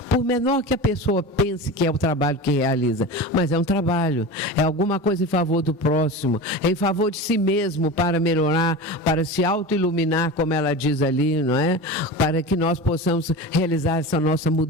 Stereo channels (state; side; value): normal; both; correlation 0.29